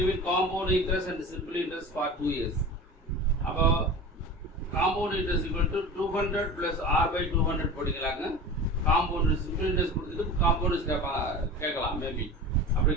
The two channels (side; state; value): both; normal; correlation 0.34